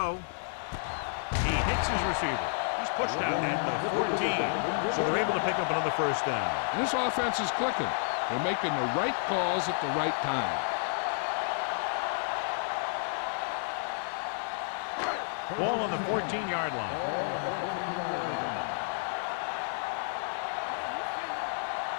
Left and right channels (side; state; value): right; silent; 57 dB below the other